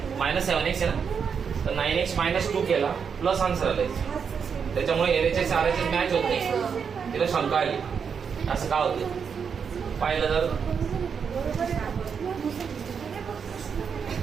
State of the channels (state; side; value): quieter; left; 6.6 dB